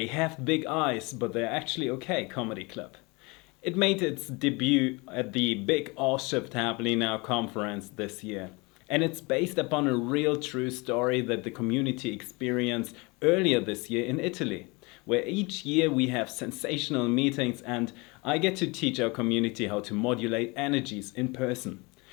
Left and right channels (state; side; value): quieter; right; 26.8 dB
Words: Have Big Eyes, but They're Actually Okay comedy club. It made its debut at the Big All Shift Happening Now conference this year. And it's based upon a real true story that the community experienced earlier this year in Italy, where each year we have sensational meetings and I get to teach our community how to modulate energies in person